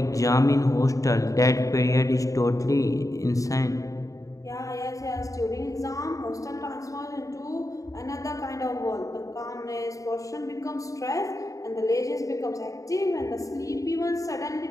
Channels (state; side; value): late; right; 0.16 ms